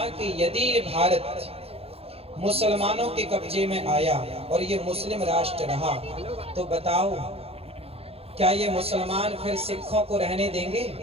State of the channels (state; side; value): late; left; 0.29 ms